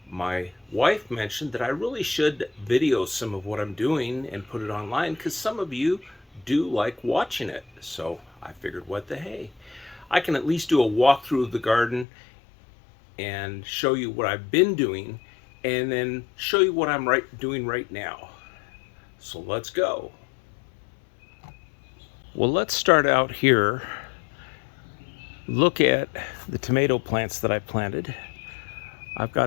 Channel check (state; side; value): drops out; right; at 12.1 s